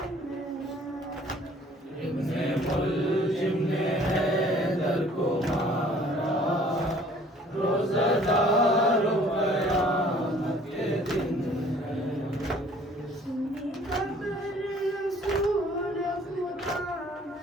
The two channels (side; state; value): both; normal; correlation 0.55